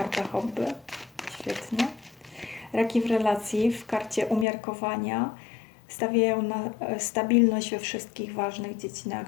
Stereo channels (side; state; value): right; drops out; at 4.5 s